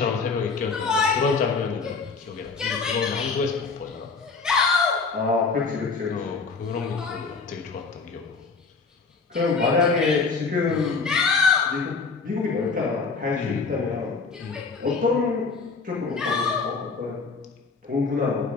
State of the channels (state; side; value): quieter; right; 4.6 dB